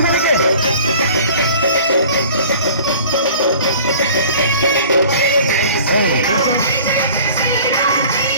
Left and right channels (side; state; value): both; inverted; correlation -0.46